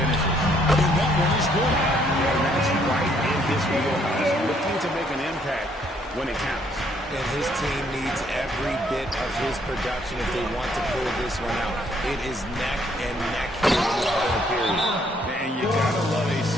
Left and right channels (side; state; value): both; normal; correlation 0.67